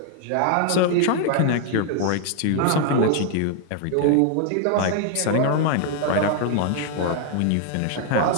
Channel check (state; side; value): different; both; correlation 0.00